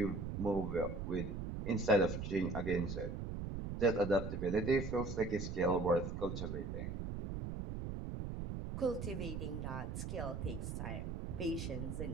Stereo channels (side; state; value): right; noise; rumble, 4 dB below the sound